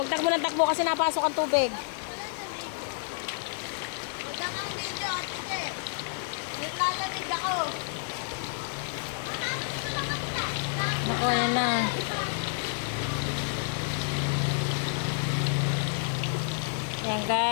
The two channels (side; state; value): right; silent; 58 dB below the other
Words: takbo ng takbo kasi napasok ang tubig. Huwag kang video, ate. Naglalamig ako. Naku, ayan na. Ayan